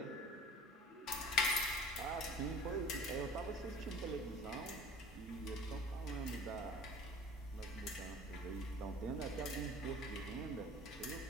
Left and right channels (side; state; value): both; normal; correlation 0.44